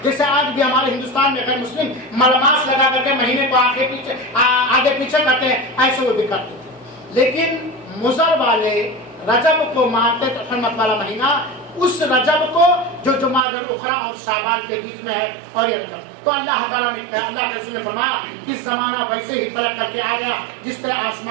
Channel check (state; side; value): drops out; left; at 13.5 s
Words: جیسے آج بھی ہمارے ہندوستان میں غیر مسلم ملماس لگا کر کے مہینے کو آگے پیچھے کرتے ہیں، ایسے وہ بھی کرتے تھے. لیکن مضر والے رجب کو مانتے تھے حرمت والا مہینہ، اس رجب کو جو جمادی الاخری اور شعبان کے بیچ میں ہے، اور یہ رجب. تو اللہ تعالیٰ نے، اللہ کے رسول نے فرمایا کہ زمانہ ویسے ہی پلٹ کر کے آ گیا جس طرح